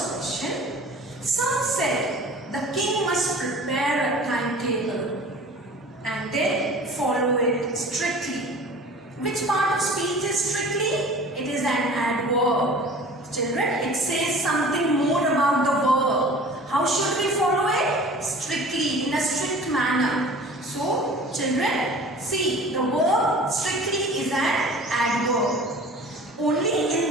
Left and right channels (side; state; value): both; normal; correlation 0.43